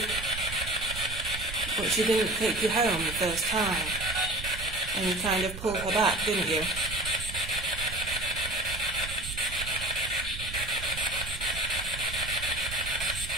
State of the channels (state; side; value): noise; right; rumble, 9 dB below the sound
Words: But she didn't take you home the first time. And you kind of pulled her back, didn't you?